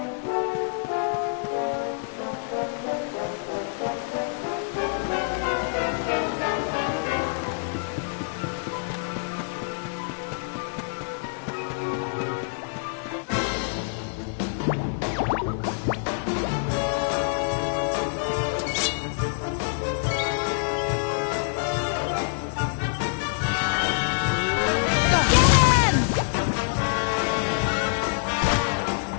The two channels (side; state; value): right; silent; 61 dB below the other